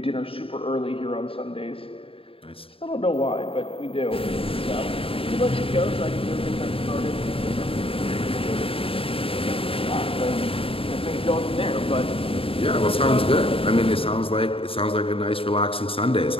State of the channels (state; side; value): late; right; 0.27 ms